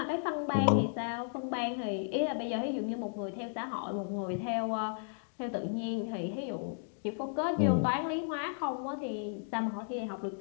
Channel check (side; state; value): right; silent; digital silence